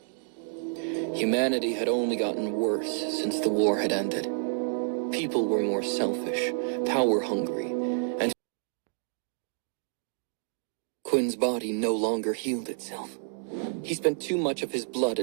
Humanity had only gotten worse since the war had ended. People were more selfish, power-hungry, and Quinn's body no longer healed itself. He spent too much of his blood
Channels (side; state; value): left; silent; digital silence